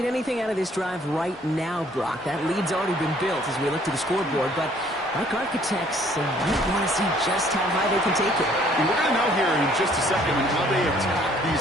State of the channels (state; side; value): normal; both; correlation 0.60